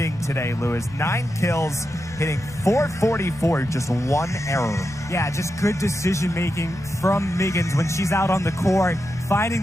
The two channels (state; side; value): noise; left; rumble, 18 dB below the sound